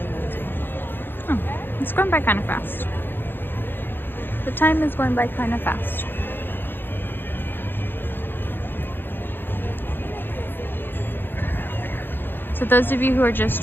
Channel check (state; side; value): late; right; 0.099 ms